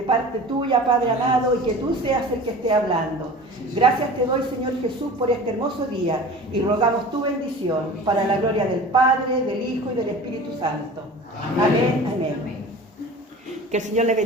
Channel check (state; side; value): normal; both; correlation 0.39